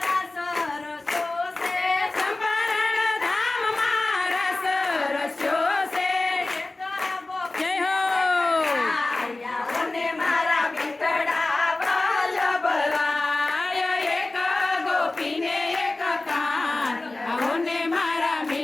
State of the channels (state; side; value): quieter; right; 3.0 dB